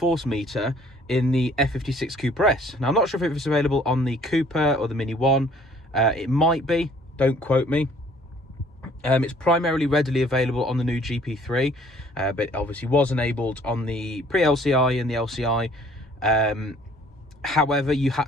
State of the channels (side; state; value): both; normal; correlation 0.58